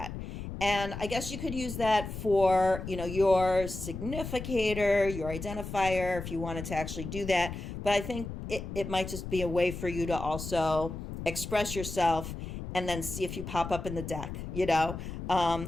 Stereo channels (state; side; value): noise; left; rumble, 8 dB below the sound